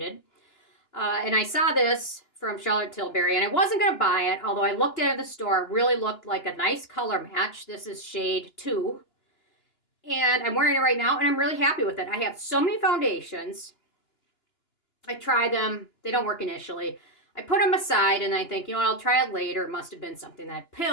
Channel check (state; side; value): late; right; 2.9 ms